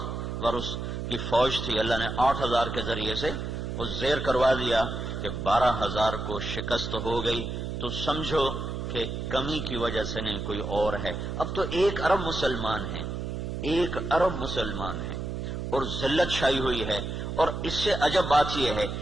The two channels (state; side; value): noise; right; hum, 4 dB below the sound